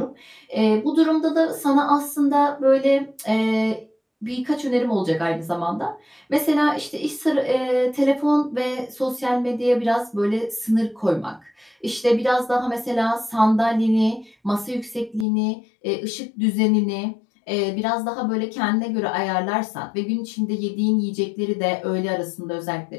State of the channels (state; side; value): drops out; right; at 15.2 s